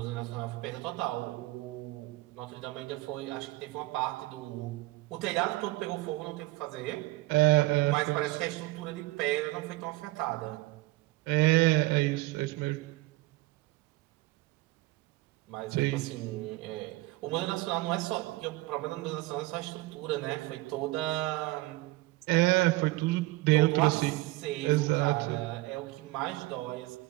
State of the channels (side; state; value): left; quieter; 20.2 dB